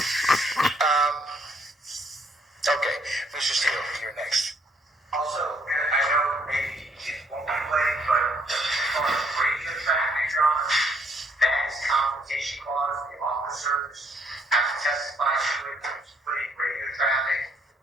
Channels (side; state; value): both; normal; correlation 0.67